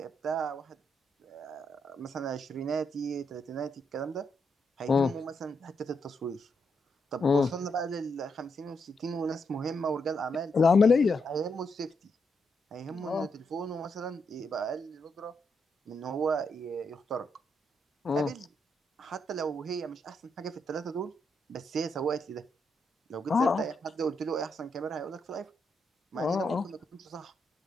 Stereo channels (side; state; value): both; normal; correlation 0.80